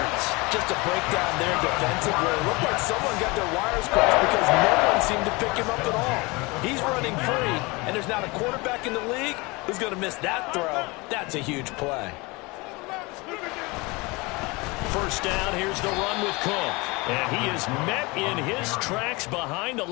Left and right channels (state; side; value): quieter; right; 25.3 dB